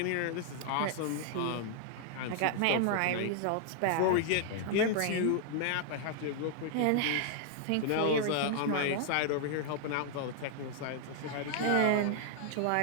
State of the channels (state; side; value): different; both; correlation -0.01